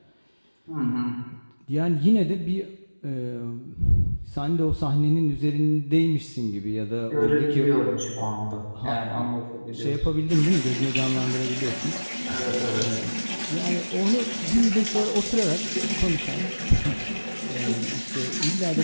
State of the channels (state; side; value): inverted; both; correlation -1.00